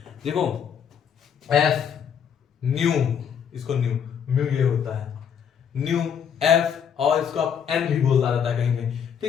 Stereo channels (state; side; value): quieter; right; 7.9 dB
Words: देखो एफ न्यू, इसको न्यू, म्यू ये होता है न्यू एफ, और इसको आप एन भी बोलता रहता है कहीं कहीं,